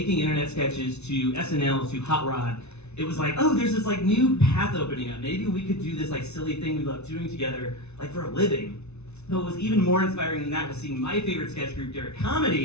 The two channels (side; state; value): right; late; 0.81 ms